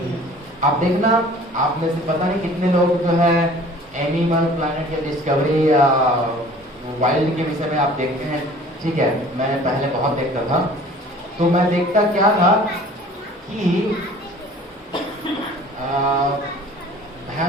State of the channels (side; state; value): both; normal; correlation 0.48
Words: आप देखना, आप में से पता नहीं कितने लोग जो है एनिमल प्लैनेट या डिस्कवरी या वाइल्ड के विषय में आप देखते हैं। ठीक है, मैंने पहले बहुत देखता था, तो मैं देखता क्या था कि